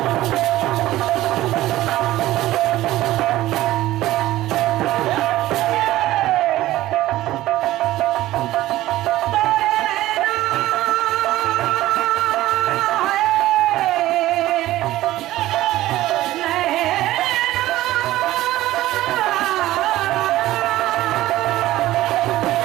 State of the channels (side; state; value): left; quieter; 15.7 dB